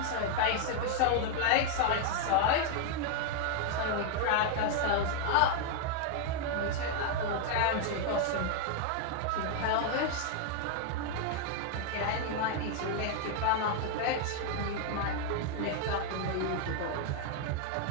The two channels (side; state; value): both; different; correlation 0.00